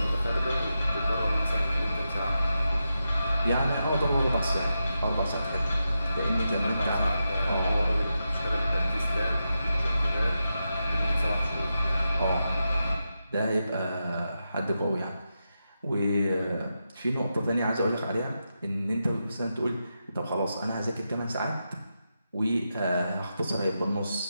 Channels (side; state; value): both; inverted; correlation -0.88